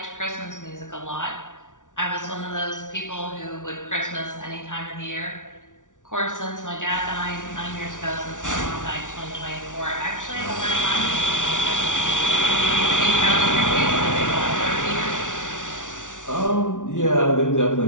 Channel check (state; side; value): late; right; 0.87 ms